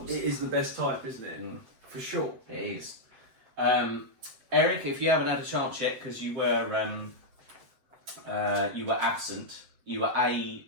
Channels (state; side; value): late; left; 7.9 ms